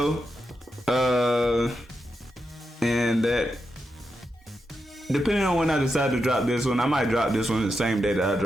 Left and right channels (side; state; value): both; normal; correlation 0.87